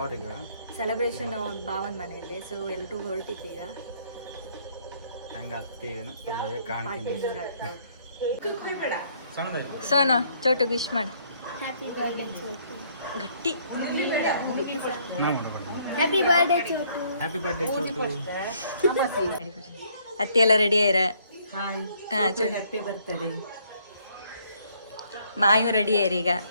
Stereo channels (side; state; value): both; inverted; correlation -0.65